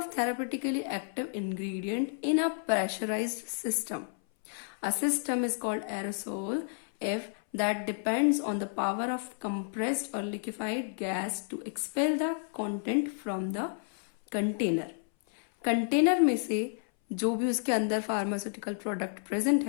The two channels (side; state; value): right; silent; 57 dB below the other